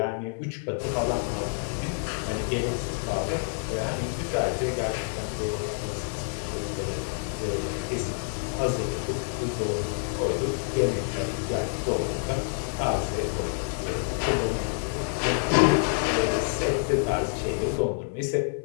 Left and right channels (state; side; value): silent; right; digital silence